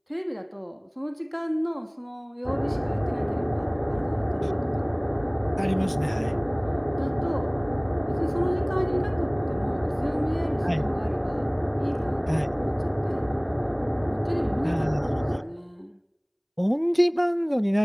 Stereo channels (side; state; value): both; identical; correlation 1.00